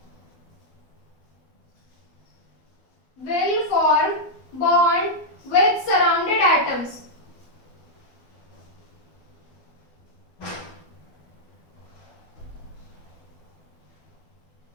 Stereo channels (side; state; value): right; late; 12 ms